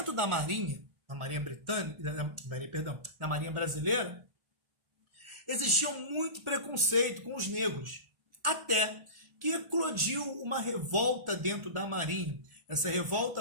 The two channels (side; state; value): left; late; 1.4 ms